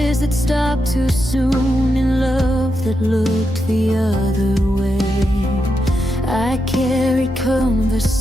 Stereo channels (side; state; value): both; normal; correlation 0.85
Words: that stopped too soon, in love that looked the other way. I carried